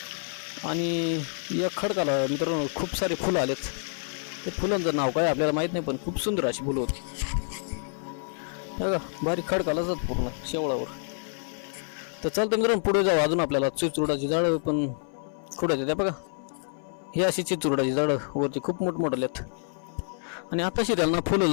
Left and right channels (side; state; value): right; silent; 57 dB below the other